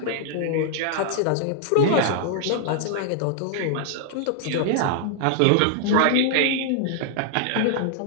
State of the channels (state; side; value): different; both; correlation 0.00